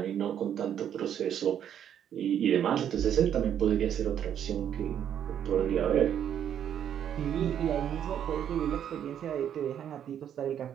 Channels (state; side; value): quieter; left; 9.5 dB